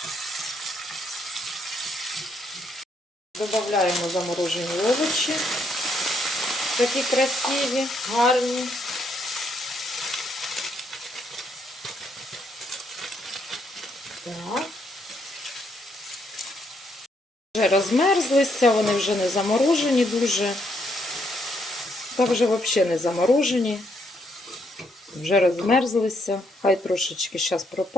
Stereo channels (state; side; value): normal; both; correlation 0.73